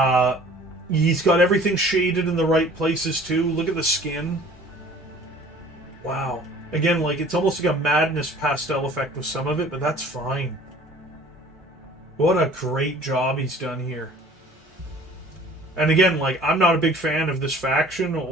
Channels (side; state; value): both; normal; correlation 0.50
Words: He's got everything shaded in the right places, too. Look at the skin. Wow. Again, like, it's almost like a madness pastel effect with some of it, but that's fine. What a great job he's done here. And again, like, I'm not a big fan of this faction